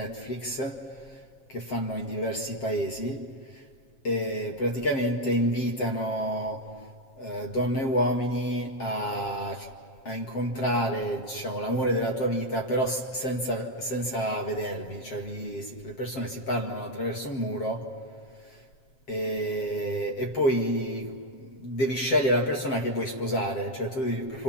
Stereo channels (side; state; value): right; late; 7.5 ms